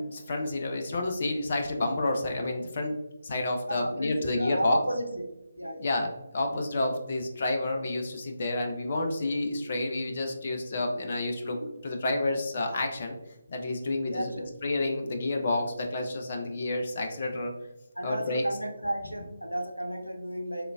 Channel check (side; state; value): both; inverted; correlation -0.86